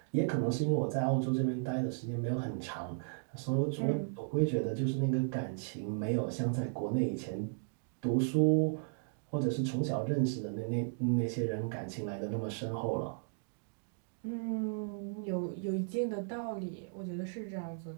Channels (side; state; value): left; silent; digital silence